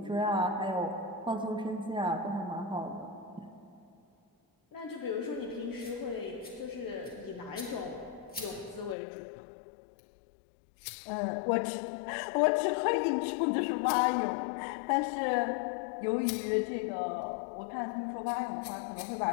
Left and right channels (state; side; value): drops out; right; at 9.0 s